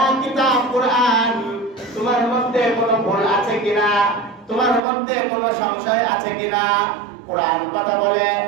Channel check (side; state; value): left; drops out; at 4.8 s